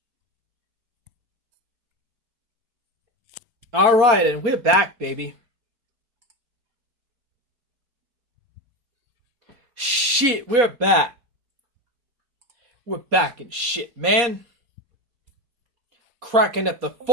Alright, and we're back, baby. Shit, we're back. We're back and shit, man. Cracking at the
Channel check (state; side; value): late; left; 4.2 ms